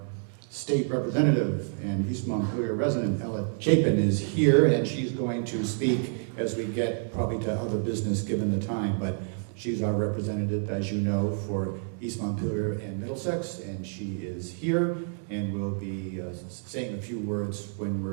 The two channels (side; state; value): left; silent; 59 dB below the other